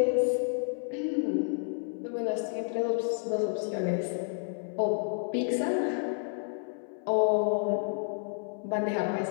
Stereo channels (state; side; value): silent; right; 58 dB below the other